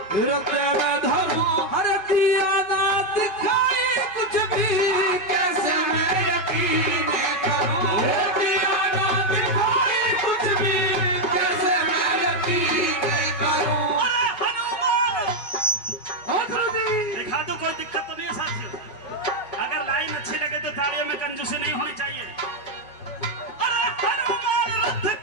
तेरे धर्म हर दिया ना दिखाई कुछ भी कैसे मैं यकीन करूं दिया ना दिखाई कुछ भी कैसे मैं यकीन करूं। अरे हनुमान जी दिखा दो, कोई दिक्कत तो नहीं है साथियों। अगर लाइन अच्छी लगे तो तालियों में कंजूसी नहीं होनी चाहिए। अरे हनुमान रथ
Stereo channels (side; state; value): right; late; 5.4 ms